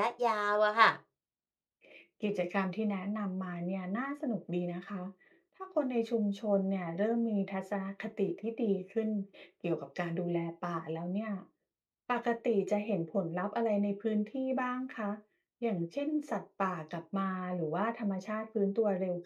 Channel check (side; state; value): both; identical; correlation 1.00